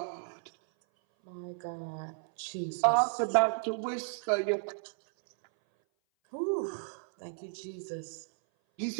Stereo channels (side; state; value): left; silent; 56 dB below the other